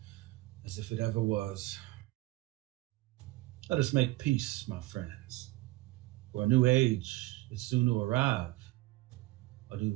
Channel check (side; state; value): left; quieter; 19.6 dB